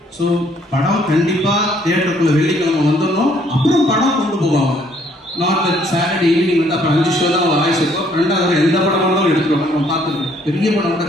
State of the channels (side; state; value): both; normal; correlation 0.65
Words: ஸோ படம் கண்டிப்பா தியேட்டருக்குள்ள வெள்ளிக்கிழமை வந்துடணும், அப்புறம் படம் கொண்டு போவாங்க. நாட் தட் சாட்டர்டே ஈவினிங் வந்து அப்புறம் 5 ஷோ தான் வாய்ஸ் இருக்கும், 2வது எந்த படம் இருந்தாலும் எடுத்துருவாங்க. நம்ம பார்த்துருக்கேன், பெரிய படம் கூட